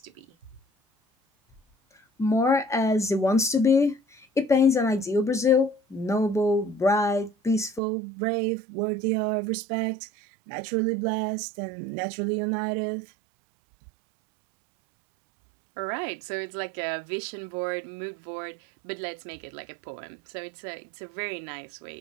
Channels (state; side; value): drops out; left; at 7.8 s